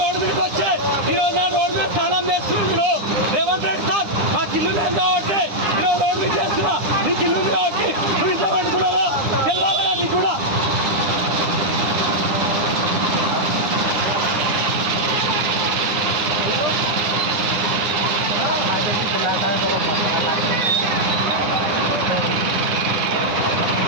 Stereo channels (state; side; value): late; left; 9.8 ms